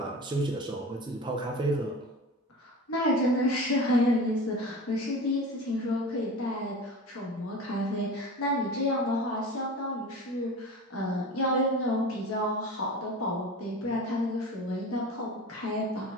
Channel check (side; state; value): both; normal; correlation 0.34